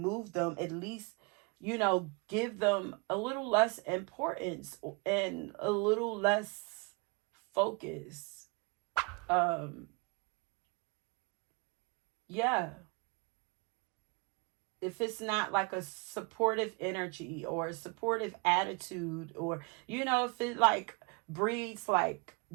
them, at least, give them a little less importance and a little less focus. Yeah. If it's not like a supportive energy or a supportive attitude, or, if it like breeds like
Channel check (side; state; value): left; quieter; 31.2 dB